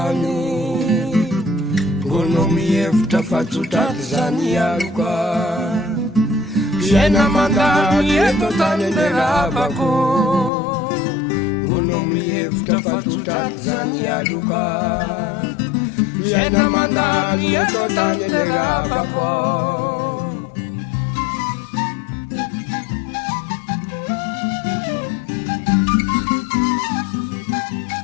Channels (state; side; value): drops out; right; at 10.5 s